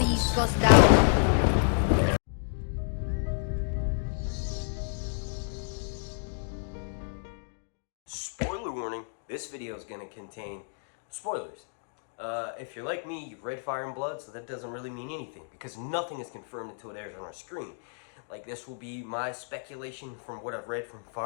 gosdau. Spoiler warning, this video is going to contain spoilers. If you're like me, you've read Fire and Blood, so that doesn't really mean anything, because nothing is confirmed until it airs on our screen. Like, this will be my speculation from what I've read from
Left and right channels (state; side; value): silent; right; digital silence